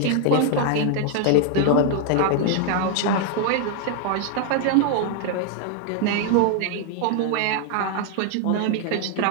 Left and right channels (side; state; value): both; different; correlation 0.00